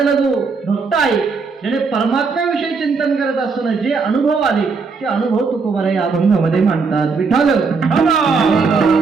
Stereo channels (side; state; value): left; quieter; 4.8 dB